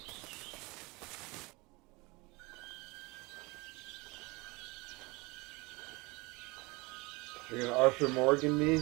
You're gonna Arthur Morgan me?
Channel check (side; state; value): left; quieter; 25.1 dB